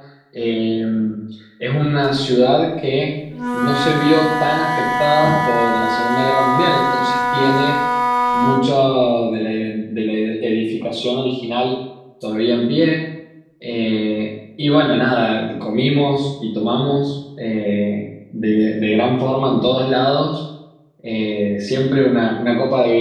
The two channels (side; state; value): both; identical; correlation 1.00